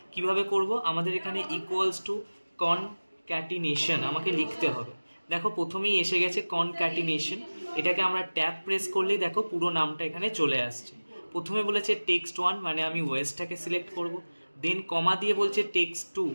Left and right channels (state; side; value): inverted; both; correlation -1.00